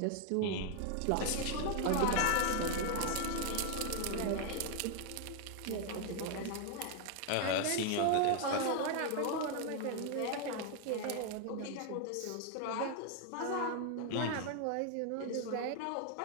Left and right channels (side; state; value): both; different; correlation 0.00